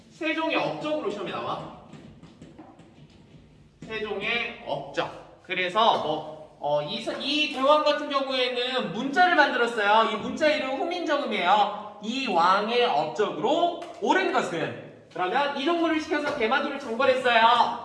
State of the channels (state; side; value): identical; both; correlation 1.00